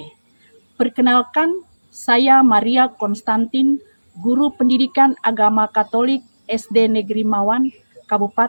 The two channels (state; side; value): inverted; both; correlation -1.00